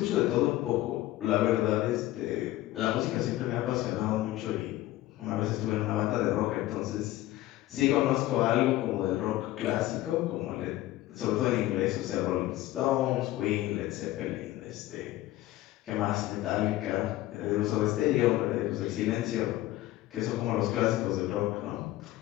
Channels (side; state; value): right; quieter; 16.0 dB